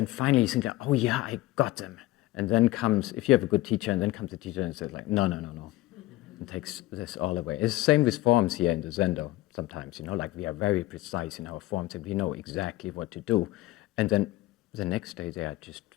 finally you think, oh yeah, I got them. And then comes, if you have a good teacher, and then comes the teacher and says like, no, and takes this all away. It's the same with forms here in the Zendo sometimes, like we are very precise in our forms and we know exactly what to do. And then the next day they are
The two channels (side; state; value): right; quieter; 17.3 dB